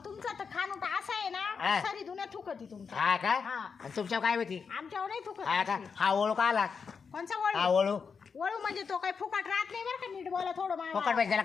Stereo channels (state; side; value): quieter; right; 5.8 dB